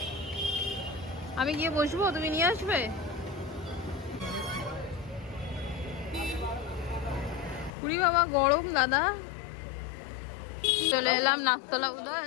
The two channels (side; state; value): right; drops out; at 7.7 s